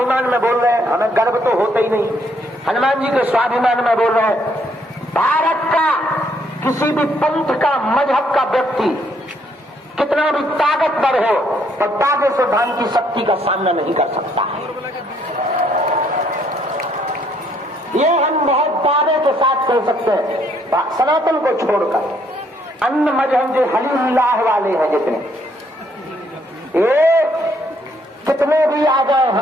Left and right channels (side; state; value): both; normal; correlation 0.69